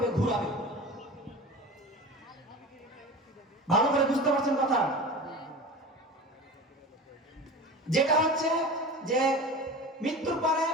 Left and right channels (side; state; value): both; normal; correlation 0.33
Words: ঘুরাবে। ভালো করে বুঝতে পারছেন কথা? যেটা হচ্ছে যে মৃত্যুর পরে